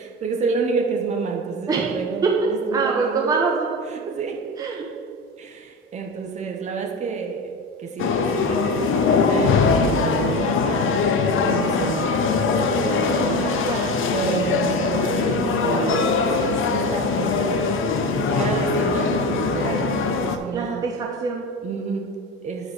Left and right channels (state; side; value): normal; both; correlation 0.23